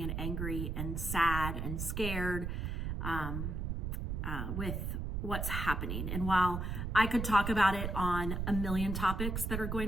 angry and sad and scared with what's happening. And while I could talk about it on a million topics that are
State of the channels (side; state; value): right; noise; rumble, 2 dB below the sound